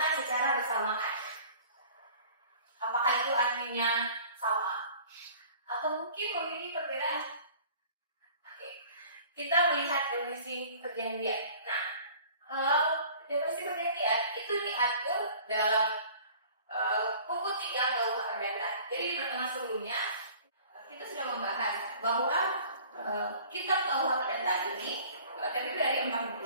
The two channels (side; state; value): both; inverted; correlation -0.48